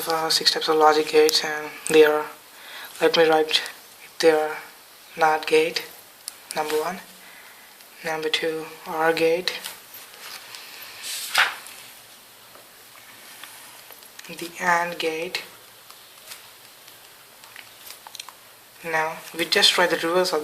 six types of logic gates, and they are, let me write, they are NOT gate, number one, number two, OR gate, the AND gate. Now we just write the reverse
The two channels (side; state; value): both; identical; correlation 1.00